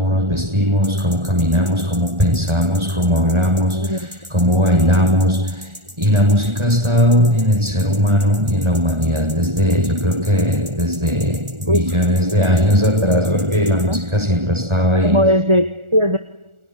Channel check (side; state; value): left; late; 1.4 ms